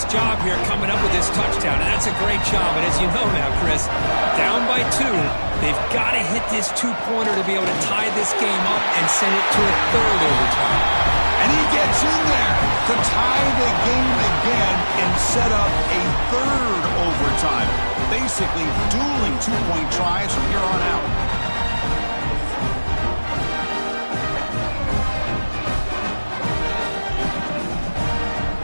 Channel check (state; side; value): inverted; both; correlation -1.00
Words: job here coming up with this touchdown, and that's a great job. And as you know now, Chris, down by 2, they've got to hit this 2-pointer to be able to tie this game up and send it to a 3rd overtime. And he gets in there to tie the game again and set up a 3rd overtime. Basically dueling 2-point tries from here on out.